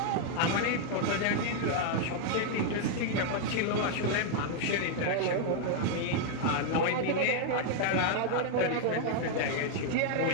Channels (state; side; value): different; both; correlation 0.00